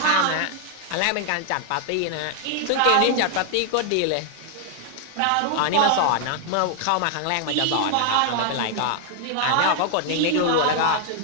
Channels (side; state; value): both; different; correlation 0.00